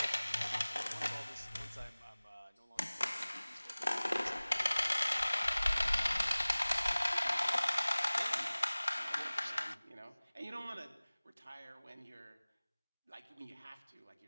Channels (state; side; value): inverted; both; correlation -1.00